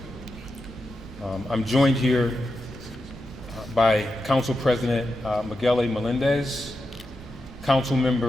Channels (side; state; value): both; normal; correlation 0.88